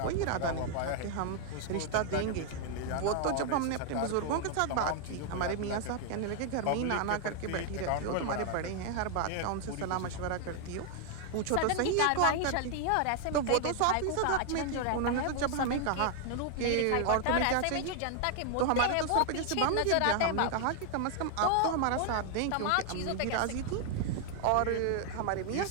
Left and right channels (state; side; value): different; both; correlation 0.00